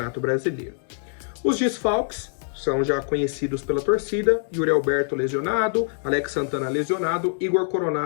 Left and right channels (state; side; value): silent; right; 62 dB below the other